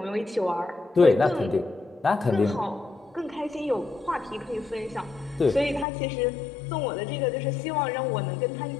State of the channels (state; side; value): drops out; right; at 5.9 s